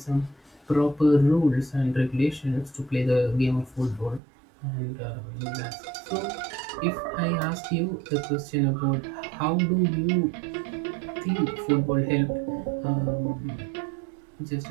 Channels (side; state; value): left; drops out; at 4.2 s